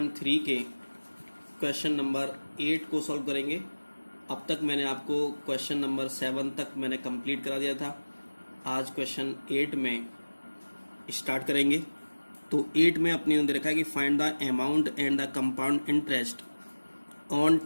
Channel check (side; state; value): both; inverted; correlation -1.00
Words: के क्वेश्चन नंबर 8 को सॉल्व करेंगे। अब तक मैंने आपको क्वेश्चन नंबर 7 तक मैंने कंप्लीट करा दिया था। आज क्वेश्चन 8 में स्टार्ट करेंगे। तो 8 में अपने दे रखा है कि find the amount and the compound interest on